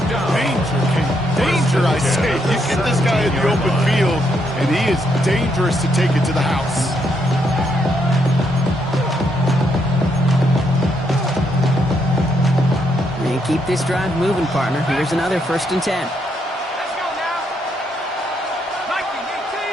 Danger, I say. You get this guy in the open field, and he is dangerous to take it to the house. And keep this drive moving, partner. Here's another 1st and 10.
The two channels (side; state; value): both; normal; correlation 0.76